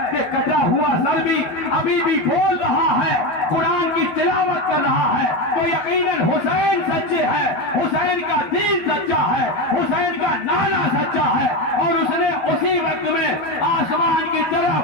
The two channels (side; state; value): right; late; 13 ms